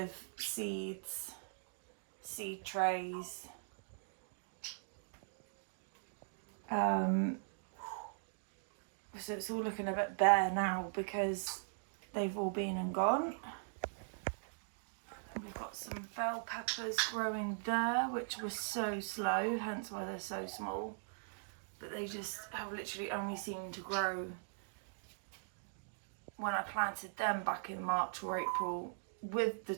seed seed trays. So it's all looking a bit bare now because they've all been and gone. And we've got some bell peppers growing there, which was so slow, hence why they're so small. But they just have literally only seemed to grow when I planted them back in March or April with the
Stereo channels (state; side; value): silent; left; digital silence